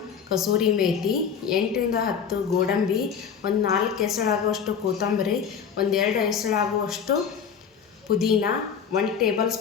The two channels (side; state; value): right; quieter; 7.1 dB